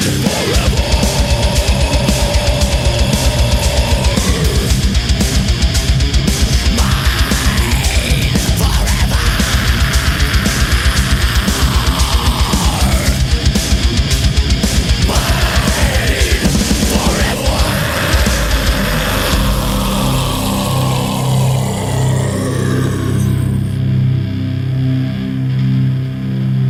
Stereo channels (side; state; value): both; identical; correlation 1.00